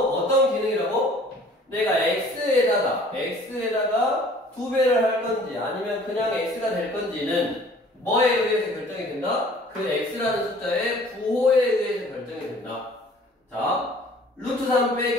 기능이라고? 내가 x에다가 2배를 할 건지 아니면 그냥 x가 될 건지는 뭐에 의해서 결정이 된다? 그 x라는 숫자의 부호에 의해서 결정이 된다. 자, 루트 3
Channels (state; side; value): normal; both; correlation 0.52